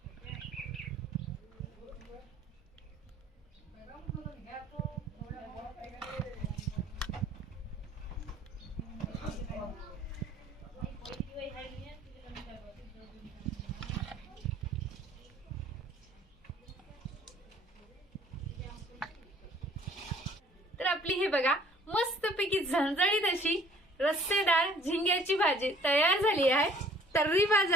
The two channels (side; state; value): both; normal; correlation 0.56